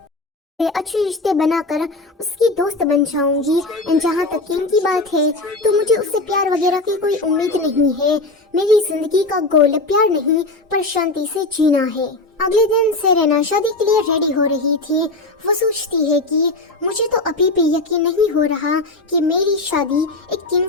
अच्छे रिश्ते बनाकर उसकी दोस्त बन जाऊंगी। एंड जहाँ तक किंग की बात है तो मुझे उससे प्यार वगैरह की कोई उम्मीद नहीं है। मेरी जिंदगी का गोल प्यार नहीं पर शांति से जीना है। अगले दिन सेरेना शादी के लिए रेडी हो रही थी। वो सोचती है कि मुझे तो अभी भी यकीन नहीं हो रहा कि मेरी शादी एक किंग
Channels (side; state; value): right; quieter; 3.0 dB